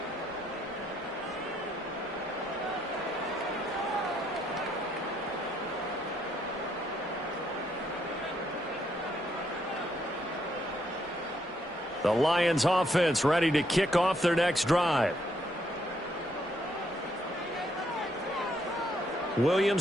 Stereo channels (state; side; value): normal; both; correlation 0.73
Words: The Lions offense ready to kick off their next drive.